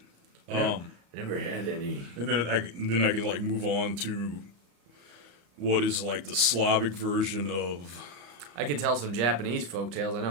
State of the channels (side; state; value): left; late; 34 ms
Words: Never had any. And then I can like move on to what is like the Slavic version of. I could tell some Japanese folk tales. I